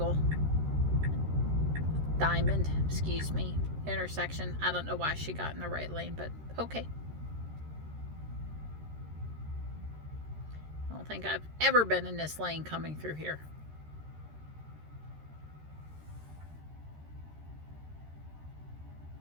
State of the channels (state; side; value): late; left; 13 ms